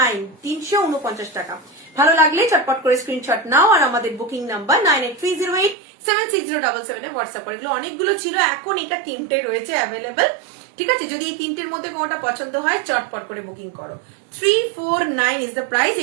349 টাকা। ভালো লাগলে চটপট করে স্ক্রিনশট নাও আর আমাদের বুকিং নাম্বার 9830876077 এ হোয়াটসঅ্যাপ করে। এগুলো অনেকগুলো ছিল, এখন এটা 3টে রয়েছে অ্যাভেলেবেল, ঠিক আছে। যদি এই 3টের মধ্যে কোনোটা পছন্দ হয় চটপট করে বুকিং করো। 349 ইজ দ্য প্রাইস।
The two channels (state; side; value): drops out; left; at 5.8 s